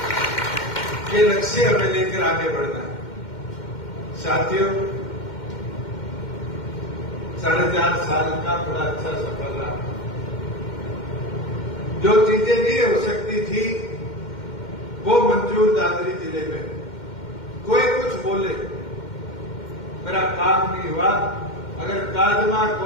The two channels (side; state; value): right; late; 2.1 ms